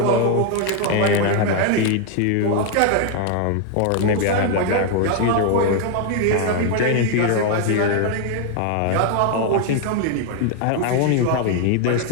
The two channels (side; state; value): both; different; correlation 0.00